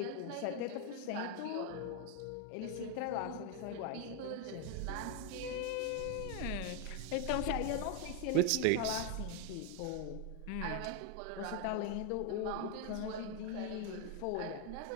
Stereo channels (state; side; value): different; both; correlation 0.01